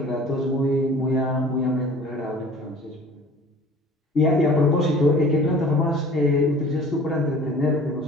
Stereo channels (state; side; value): normal; both; correlation 0.47